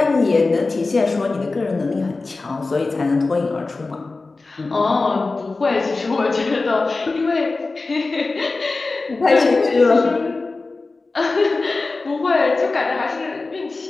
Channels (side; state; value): right; quieter; 3.6 dB